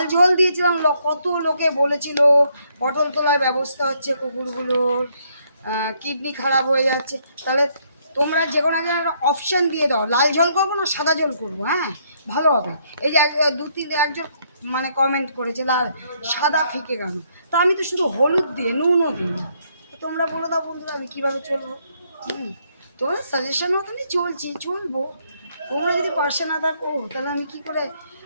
ঝোল দিয়েছিলাম কত লোকে বলেছিল পটল তোলার ব্যবস্থা হচ্ছে, কুকুরগুলোর কিডনি খারাপ হয়ে যাচ্ছে। তাহলে তোমরা যে কোনো একটা অপশান দিয়ে দাও, লাল ঝোল করবো না সাদা ঝোল করবো, হ্যাঁ ভালো হবে। এই যে একজন মানে কমেন্ট করেছে লাল সাদা ফিকে কেন, তো আমি তো শুধু হলুদ দিয়ে নুনও দিই না। তোমরা বলে দাও বন্ধুরা আমি কীভাবে চলবো। তোমার সাজেশন মতনই চলবো। তোমরা যদি পাশে না থাকো তাহলে আমি কি করে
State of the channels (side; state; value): both; inverted; correlation -0.71